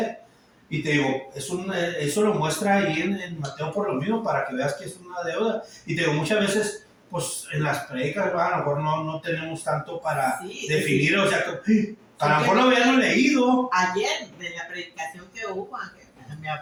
Y te digo, eso lo muestra ahí en Mateo por lo mismo, para que veas que es una deuda. Y te digo, muchas veces, pues en las predicas, a lo mejor no tenemos tanto para definir, o sea, que a lo mejor lo habíamos leído. Ayer, de la predicación que hubo, me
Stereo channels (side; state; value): both; identical; correlation 1.00